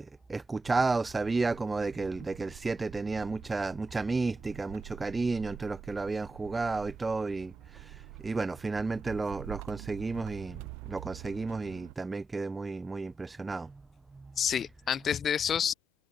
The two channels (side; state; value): both; normal; correlation 0.88